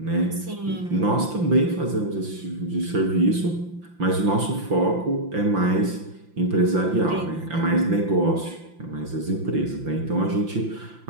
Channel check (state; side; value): late; left; 5.8 ms